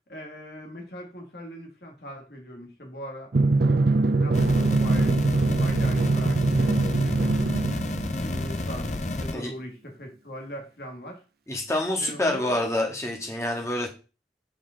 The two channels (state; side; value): normal; both; correlation 0.81